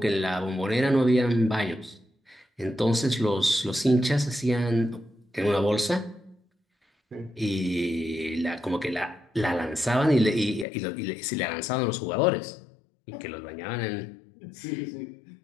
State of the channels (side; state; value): right; drops out; at 10.7 s